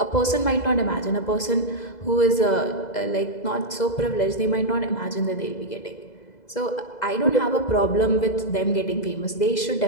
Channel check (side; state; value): right; late; 2.0 ms